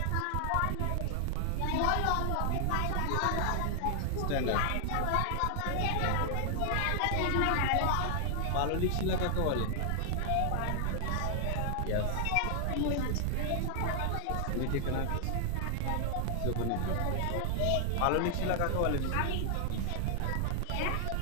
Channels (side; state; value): both; different; correlation 0.00